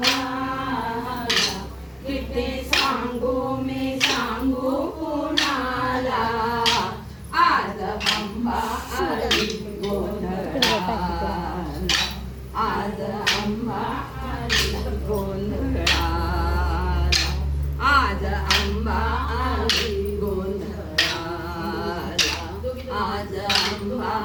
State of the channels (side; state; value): both; identical; correlation 1.00